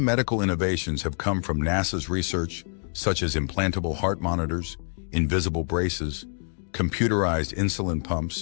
innovations have come from NASA's research, such as implantable heart monitors, invisible braces, computerized insulin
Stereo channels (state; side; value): silent; right; digital silence